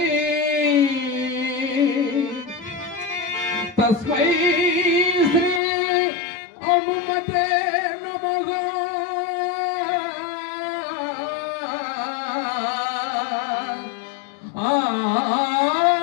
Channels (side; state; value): right; drops out; at 5.6 s